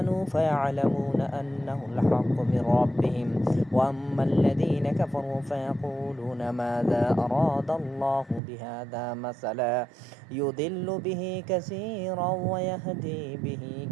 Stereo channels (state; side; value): drops out; left; at 8.4 s